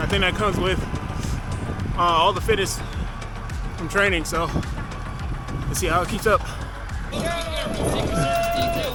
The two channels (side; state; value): both; identical; correlation 1.00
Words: I think that comes with all the fitness from training, so let's see how it keeps up.